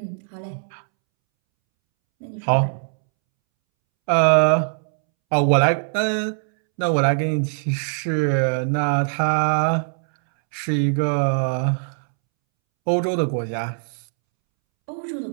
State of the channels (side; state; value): left; silent; 64 dB below the other